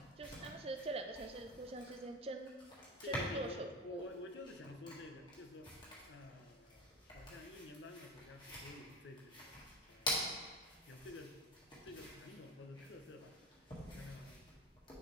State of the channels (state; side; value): normal; both; correlation 0.26